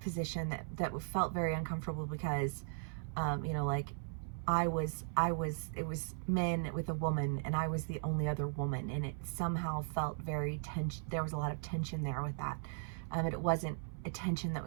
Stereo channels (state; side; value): silent; left; 53 dB below the other